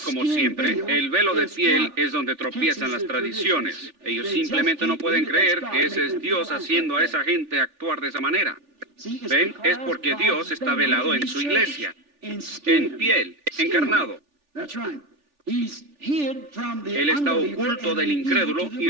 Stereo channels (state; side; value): late; left; 3.4 ms